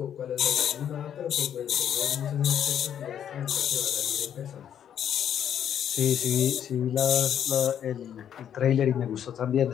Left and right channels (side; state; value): right; quieter; 9.4 dB